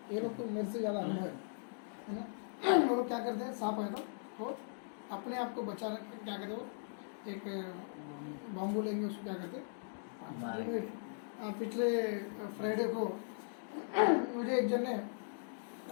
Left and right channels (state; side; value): silent; right; digital silence